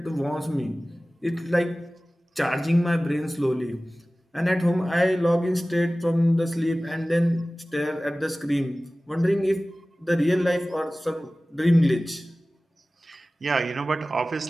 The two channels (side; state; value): both; normal; correlation 0.97